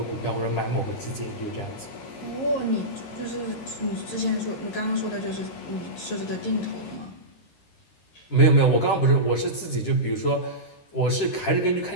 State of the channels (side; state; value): right; late; 13 ms